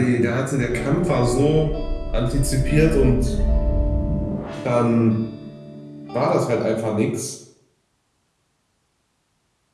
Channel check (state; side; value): identical; both; correlation 1.00